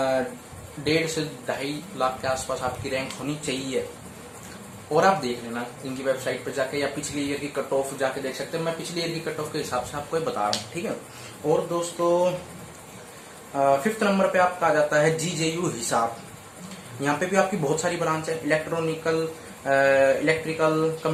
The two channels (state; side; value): identical; both; correlation 1.00